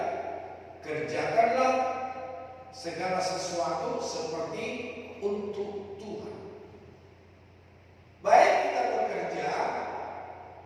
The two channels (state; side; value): identical; both; correlation 1.00